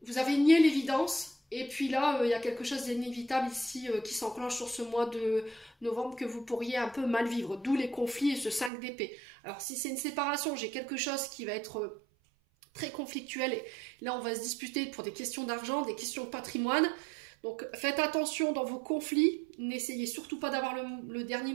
Vous avez nié l'évidence. Et puis là, il y a quelque chose d'inévitable ici qui s'enclenche sur ce mois de novembre que vous pourriez un peu mal vivre. D'où les conflits et ce 5 d'épée. Alors si c'est une séparation, j'ai quelque chose qui va être très conflictuel. Et là, on va se disputer pour des questions d'argent, des questions de patrimoine. Donc faites attention dans vos conflits, n'essayez surtout pas d'avoir le dernier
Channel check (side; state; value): left; drops out; at 8.7 s